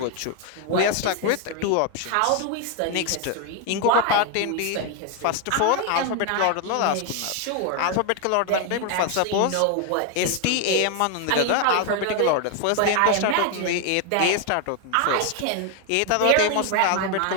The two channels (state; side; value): different; both; correlation 0.01